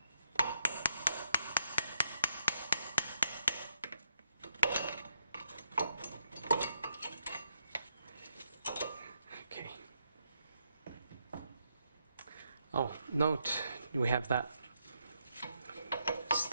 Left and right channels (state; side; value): inverted; both; correlation -0.78